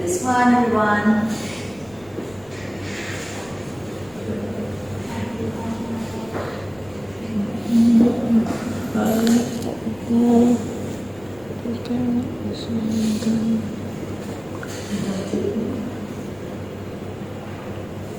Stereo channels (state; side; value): noise; left; rumble, 25 dB below the sound